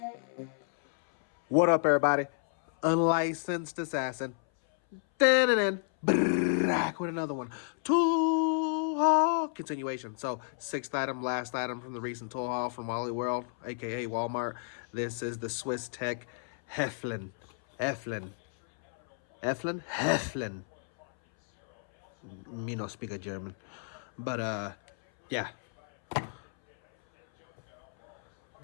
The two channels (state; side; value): silent; right; 57 dB below the other